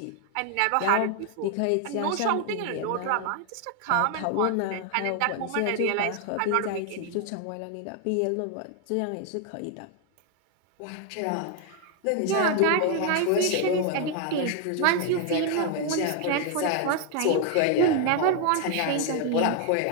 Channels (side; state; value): both; different; correlation 0.00